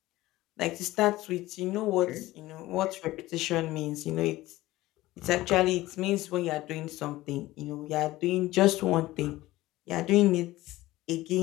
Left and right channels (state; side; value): quieter; right; 17.5 dB